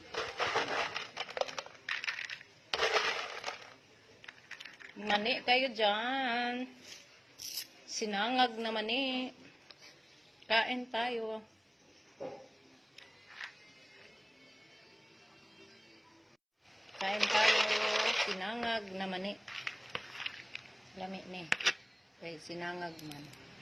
Mani kayo dyan. Sinangag na mani. Kain tayo. Kain tayo. Sinangag na mani. Lami ni. Okay, sinangag man.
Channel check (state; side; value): identical; both; correlation 1.00